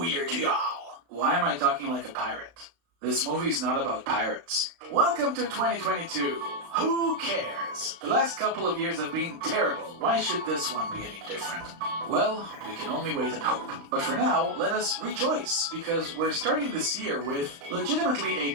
Year to y'all! Why am I talking like a pirate? This movie's not about pirates. Welcome to 2022. Who cares? The last couple of years have been terrible. Why should this one be any different? Well, we can only wait and hope. But for now, let us rejoice, because we're starting this year with legitimately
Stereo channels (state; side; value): late; left; 35 ms